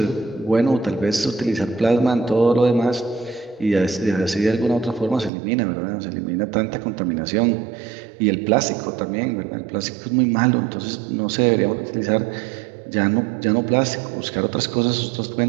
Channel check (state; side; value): drops out; left; at 5.3 s